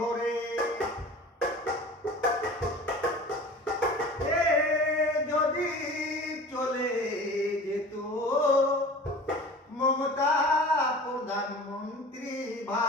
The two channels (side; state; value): both; normal; correlation 0.39